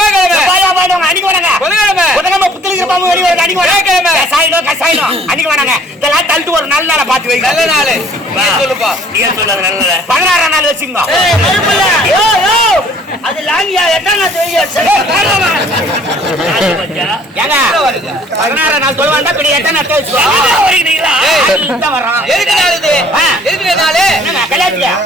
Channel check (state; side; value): normal; both; correlation 0.57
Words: அன்னைக்கு வேணாங்க. புதன்கிழமை புதன்கிழமை புத்தலிக்கிற பாம்பு வெளியே வருது அன்னைக்கு வியாழக்கிழமை கசாயினம் அன்னைக்கு வேணாங்க. இதெல்லாம் தள்ளிட்டு ஒரு நல்ல நாளை பார்த்து வைங்க. நல்ல நாள் சொல்லுப்பா. நீங்க சொல்லுங்க நல்ல 16ஆம் நாள் வச்சுங்க. அது லாங்கியா எட்டாம் நாள் ஏங்க 16ஆம் நாள் சொல்ல வேண்டாம். இப்படி எட்டாம் நாள் வச்சுக்கோ. வர்றான் எதுக்கு நாள் இது? எதுக்கு நாள்? கல்யாணத்துக்கு